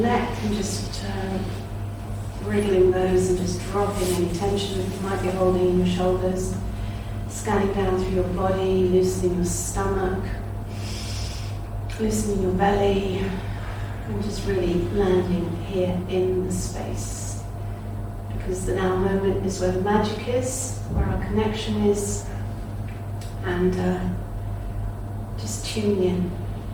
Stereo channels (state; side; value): identical; both; correlation 1.00